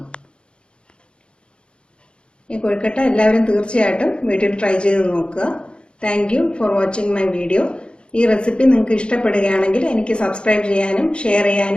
ഈ കൊഴുക്കട്ട എല്ലാവരും തീർച്ചയായിട്ടും വീട്ടിൽ ട്രൈ ചെയ്ത് നോക്കുക. Thank you for watching my video. ഈ റെസിപ്പി നിങ്ങൾക്ക് ഇഷ്ടപ്പെടുകയാണെങ്കിൽ എനിക്ക് സബ്സ്ക്രൈബ് ചെയ്യാനും ഷെയർ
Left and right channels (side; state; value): right; late; 0.055 ms